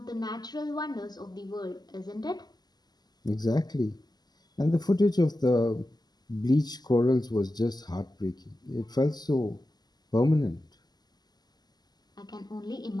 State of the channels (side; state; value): right; late; 0.20 ms